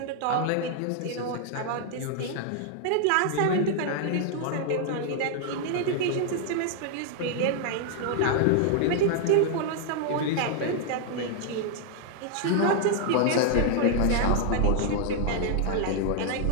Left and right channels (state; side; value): different; both; correlation 0.00